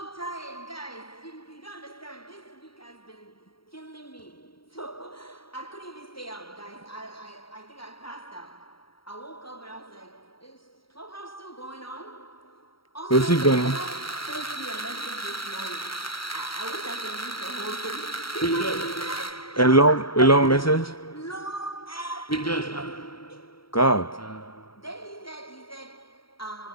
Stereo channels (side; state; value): right; late; 0.74 ms